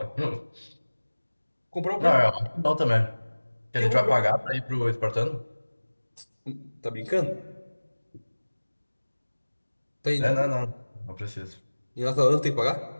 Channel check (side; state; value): both; inverted; correlation -1.00